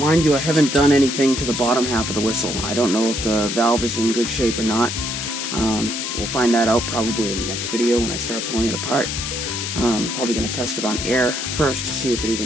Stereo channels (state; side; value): noise; left; hiss, 4 dB below the sound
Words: you, I haven't done anything to the bottom half of the whistle. I don't know if the valve is in good shape or not. We'll find that out probably in the next video when I start pulling it apart. Probably going to test it on air first to see if it